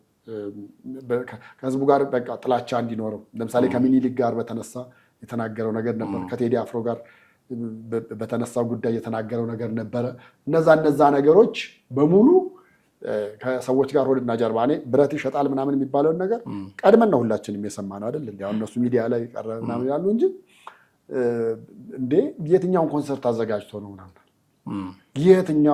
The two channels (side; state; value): both; identical; correlation 1.00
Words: ከህዝቡ ጋር በቃ ጥላቻ እንዲኖረው ለምሳሌ ከሚኒሊክ ጋር በተነሳ የተናገረው ነገር ነበር። ከቴዲ አፍሮ ጋር በተነሳው ጉዳይ የተናገረው ነገር ነበረ። እነዛ ነገሮች በሙሉ ከሰዎች ጋር ሆድና ጀርባ እኔ ብረት ይሸጣል ምናምን የሚባለውን ነገር ቀድመን ነው ሁላችንም የሰማነው አይደል? እንዴ እነሱ ሚዲያ ላይ ቀረበ ምናምን ይላሉ እንጂ እንዴ የትኛውን ኮንሰርት አዘጋጅቶ ነው ምናምን